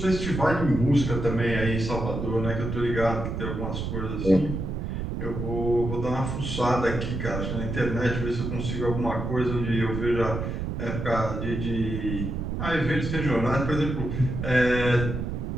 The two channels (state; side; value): noise; right; rumble, 4 dB below the sound